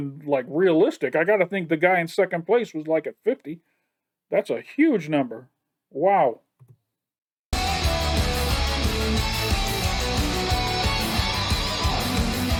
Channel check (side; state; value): both; identical; correlation 1.00